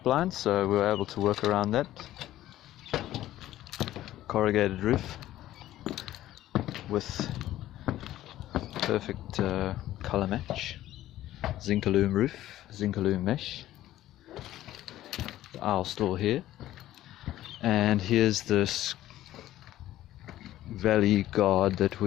so we were able to work around that. Corrugated roof with perfect color match, Zinc-alume roof, Zinc-alume mesh. The aisle store here, and here's this valley guard that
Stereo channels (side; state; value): right; quieter; 14.1 dB